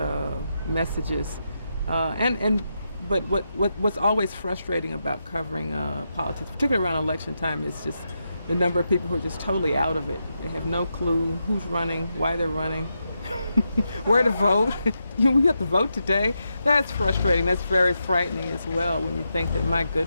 messages, but what's always frustrating about covering politics, particularly around election time, is just the number of people who are just totally out of it. They have no clue who's running, why they're running, where to vote. We have to vote today. That's frustrating. That's very frightening as well when you think that, my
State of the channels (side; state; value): both; inverted; correlation -0.85